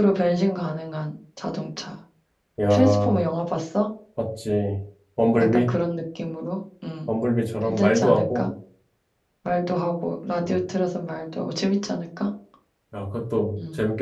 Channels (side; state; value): both; identical; correlation 1.00